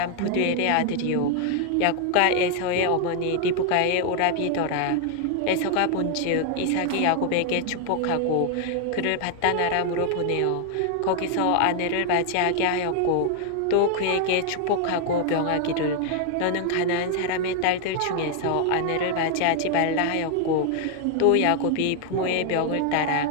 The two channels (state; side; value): different; both; correlation 0.00